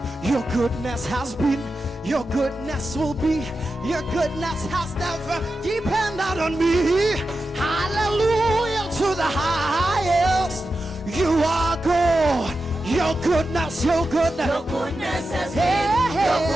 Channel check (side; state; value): both; normal; correlation 0.91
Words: your goodness has been, your goodness will be, your goodness has never depended on me. Hallelujah to the highest. You are good. Your goodness, your goodness. Your goodness has been, your